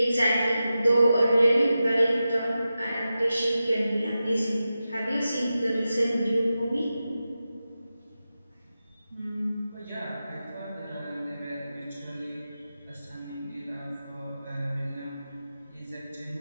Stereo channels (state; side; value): inverted; both; correlation -0.92